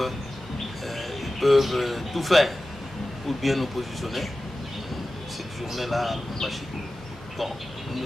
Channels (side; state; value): both; normal; correlation 0.95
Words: peuvent tout faire pour bien nous positionner cette journée-là à Lubumbashi. Bon, nous